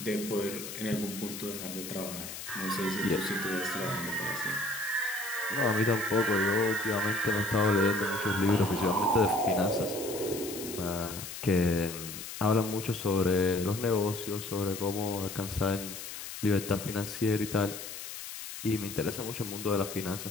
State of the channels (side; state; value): left; noise; hiss, 9 dB below the sound